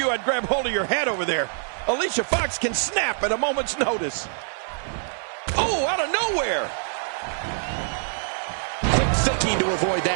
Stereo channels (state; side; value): silent; left; 62 dB below the other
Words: I'd grab hold of your hat over there. Alicia Fox can snap at a moment's notice. Oh, out of nowhere. Quick thinking to avoid